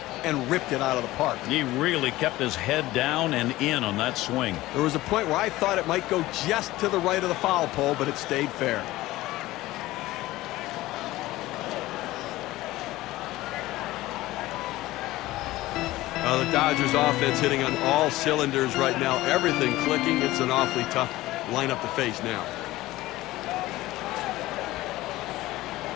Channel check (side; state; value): right; quieter; 17.5 dB